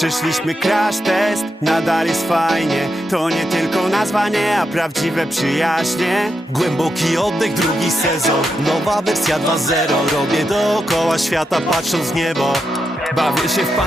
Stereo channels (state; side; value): normal; both; correlation 0.85